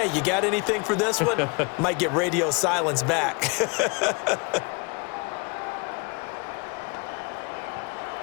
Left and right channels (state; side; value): quieter; right; 30.9 dB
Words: you got anything for this one? Might get radio silence back.